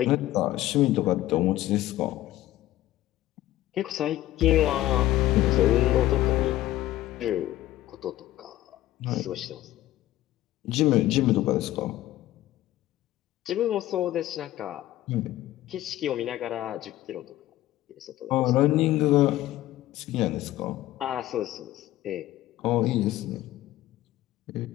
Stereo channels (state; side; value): quieter; right; 14.9 dB